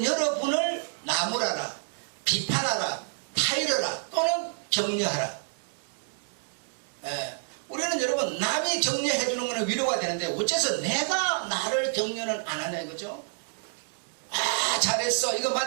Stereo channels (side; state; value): left; silent; 59 dB below the other